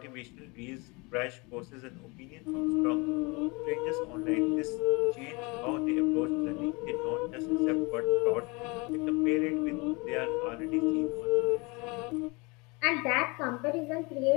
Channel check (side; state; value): right; quieter; 27.6 dB